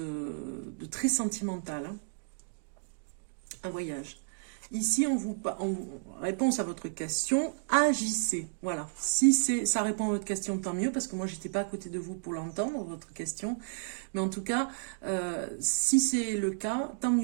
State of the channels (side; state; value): left; silent; digital silence